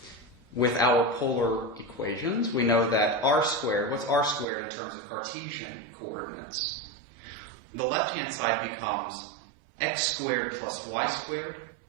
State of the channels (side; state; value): left; drops out; at 4.5 s